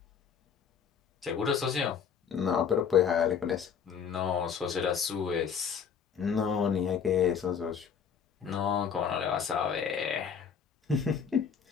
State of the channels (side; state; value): right; quieter; 7.0 dB